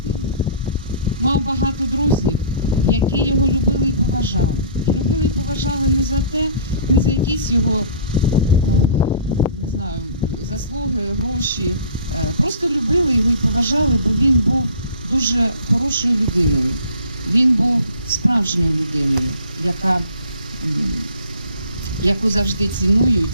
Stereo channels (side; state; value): both; inverted; correlation -0.48